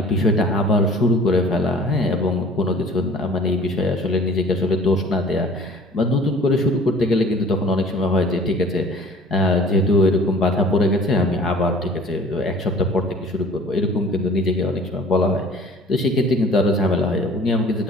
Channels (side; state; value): both; normal; correlation 0.49